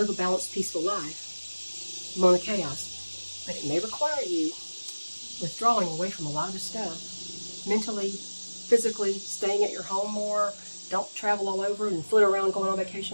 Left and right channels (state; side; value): inverted; both; correlation -1.00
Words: a balanced, peaceful life among the chaos, but it may require you withdrawing away from a lot of the stuff, mentally, physically, staying at your home more. Don't travel all over and flit around going on